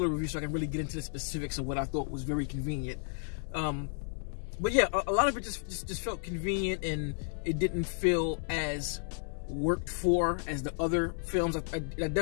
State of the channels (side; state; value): right; silent; digital silence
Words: review so I can really get into the specifics of what I thought was very convenient. But yeah, a lot of it just felt convenient, and it didn't feel as worked for as the other films. I